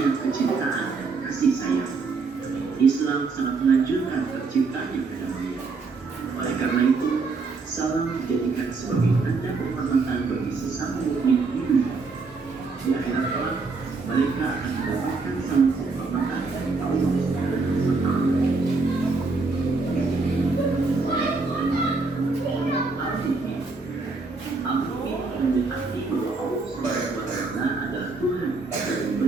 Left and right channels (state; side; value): quieter; left; 4.1 dB